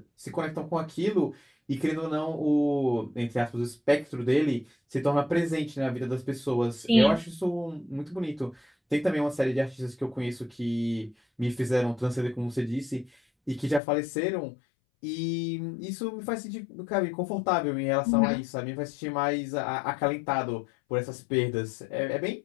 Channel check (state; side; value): drops out; right; at 13.8 s